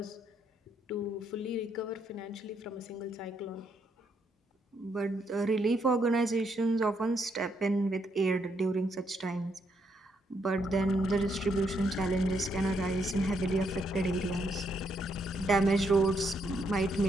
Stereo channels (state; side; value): normal; both; correlation 0.75